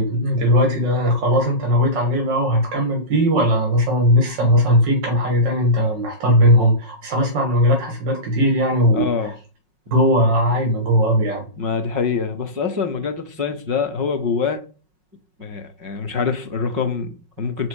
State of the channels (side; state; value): left; late; 5.5 ms